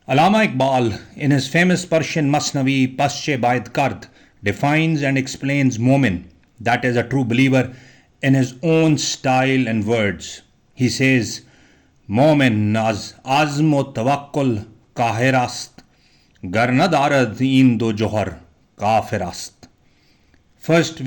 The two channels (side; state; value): both; identical; correlation 1.00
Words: Allama Iqbal, in his famous Persian Masnavi Pasche Baid Kard, defines and explains Momin, that is a true believer, in his own style and words. He says, Momin az azm o tawakkul kahir ast, gar na darad in do johar kafir ast. First,